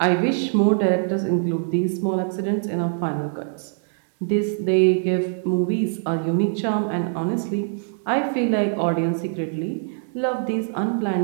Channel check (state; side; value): silent; left; 63 dB below the other